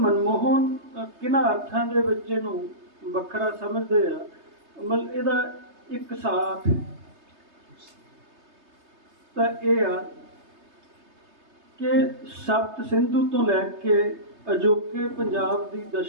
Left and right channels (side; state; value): left; late; 3.2 ms